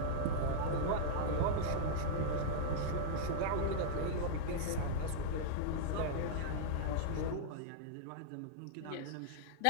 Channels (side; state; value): both; different; correlation -0.02